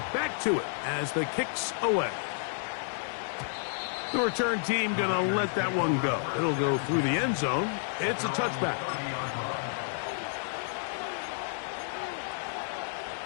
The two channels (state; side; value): silent; right; digital silence